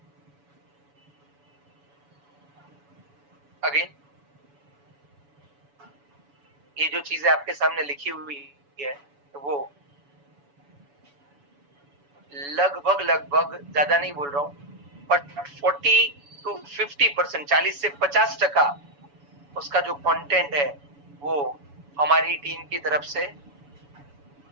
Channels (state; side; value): late; left; 7.0 ms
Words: अगेन ये जो चीजें आपके सामने लिखी हुई है वो लगभग लगभग, ज्यादा नहीं बोल रहा हूं, बट 40 to 50%, 40 से 50% उसका जो कंटेंट है वो हमारी टीम की तरफ से